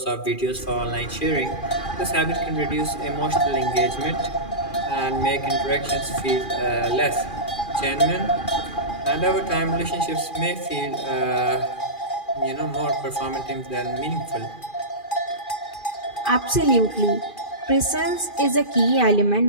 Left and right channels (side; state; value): right; late; 2.4 ms